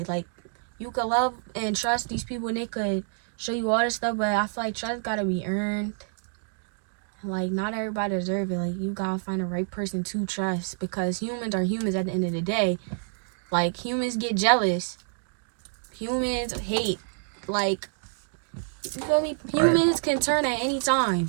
Like, you could love and trust these people and they could show you all this stuff, but I feel like trust gotta be earned. Like, not everybody deserve it. Like, you gotta find the right person to trust, because humans are humans at the end of the day. Like, humans get jealous. Humans hate. Like, you feel me? Humans can turn at any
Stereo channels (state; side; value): silent; left; 60 dB below the other